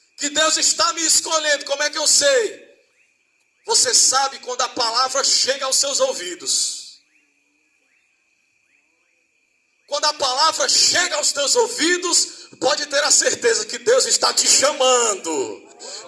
Que Deus está me escolhendo, como é que eu sei? Você sabe quando a palavra chega aos seus ouvidos. Quando a palavra chega aos teus ouvidos, pode ter a certeza que Deus está te chamando.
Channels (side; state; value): both; identical; correlation 1.00